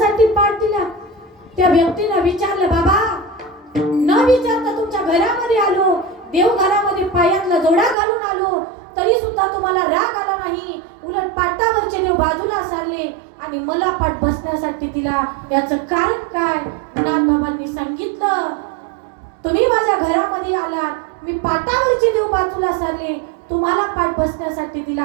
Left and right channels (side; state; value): left; drops out; at 8.0 s